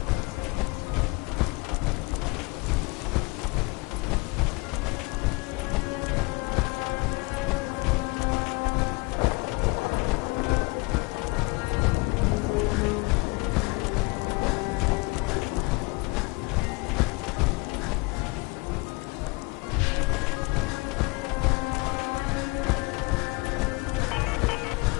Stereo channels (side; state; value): right; quieter; 26.6 dB